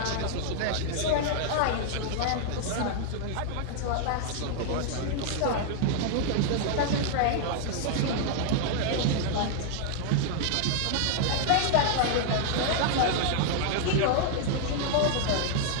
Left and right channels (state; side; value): different; both; correlation 0.00